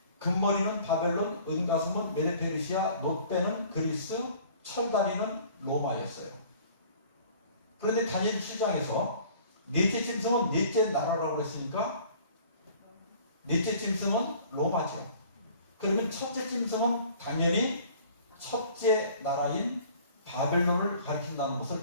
금머리는 바벨론, 은가슴은 메데페르시아, 놋배는 그리스, 철다리는 로마였어요. 그런데 다니엘 7장에서 넷째 짐승은 넷째 나라라고 그랬으니까 넷째 짐승은 로마죠. 그러면 첫째 짐승은 당연히 첫째 나라인 바벨론을 가리킨다는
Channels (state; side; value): inverted; both; correlation -0.50